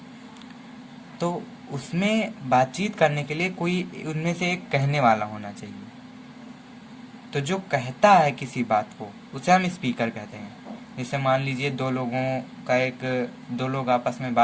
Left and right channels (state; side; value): identical; both; correlation 1.00